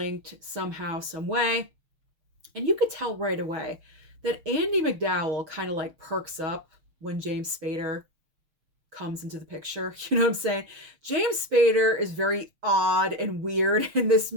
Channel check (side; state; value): left; late; 6.5 ms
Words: somehow, some way. And you could tell right away that Andie MacDowell kind of like perks up when James Spader comes into the picture. You know what I'm saying? James Spader is very odd and weird in this